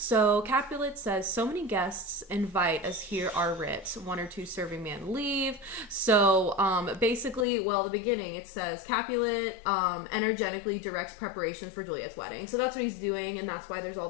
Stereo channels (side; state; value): right; drops out; at 7.5 s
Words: Capulet says, so many guests invite as here are writ. 1 or 2 serving man leave. So basically, well, the beginning, it says Capulet energetically directs preparations for Juliet's wedding. So that's what he's doing, and that's why there's all